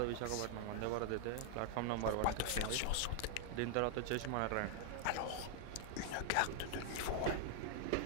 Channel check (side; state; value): both; different; correlation -0.01